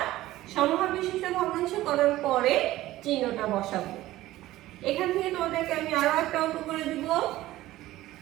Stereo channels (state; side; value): quieter; left; 16.1 dB